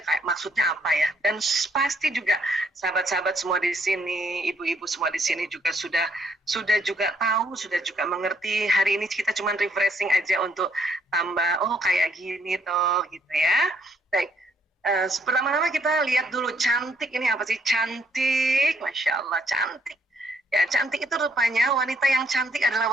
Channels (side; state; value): both; normal; correlation 0.69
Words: kayak maksudnya apa ya. Dan pasti juga sahabat-sahabat semua di sini, ibu-ibu semua di sini juga sudah juga tahu, sudah juga mengerti. Hari ini kita cuma refreshing aja untuk tambah, oh kayak gini toh gitu ya. Baik. Pertama-tama kita lihat dulu cantik ini apa sih? Cantik, Masya Allah, cantik. Ya, cantik itu rupanya wanita yang cantik adalah